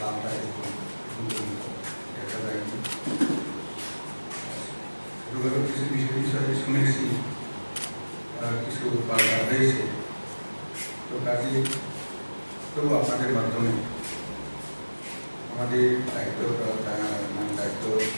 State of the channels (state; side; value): inverted; both; correlation -1.00